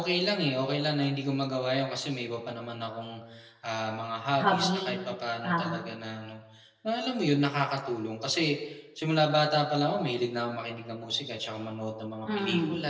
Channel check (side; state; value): both; identical; correlation 1.00